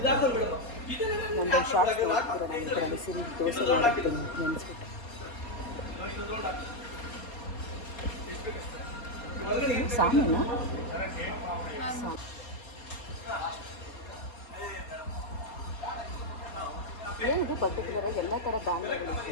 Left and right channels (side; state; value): right; late; 4.2 ms